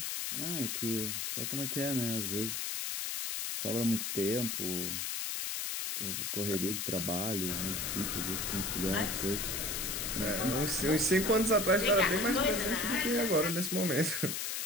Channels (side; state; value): left; noise; hiss, 2 dB below the sound